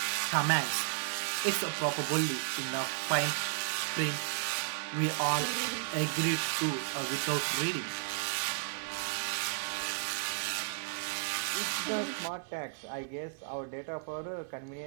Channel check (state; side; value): silent; left; 55 dB below the other